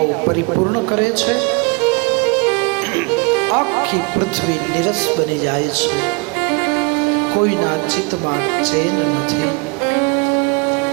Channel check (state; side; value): quieter; left; 30.3 dB